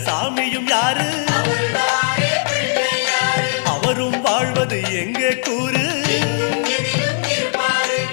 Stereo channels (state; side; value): silent; right; digital silence